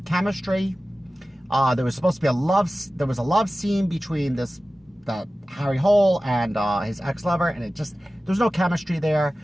chemistry. There was supposed to be a love scene between the Harry Hole and his ex-lover, and there's no chemistry there.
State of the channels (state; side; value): normal; both; correlation 0.96